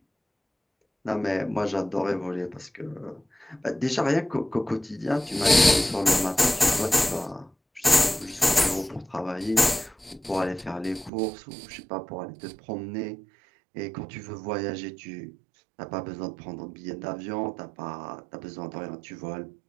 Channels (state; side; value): drops out; left; at 11.1 s